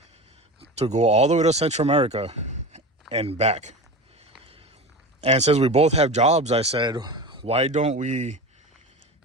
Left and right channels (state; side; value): normal; both; correlation 0.28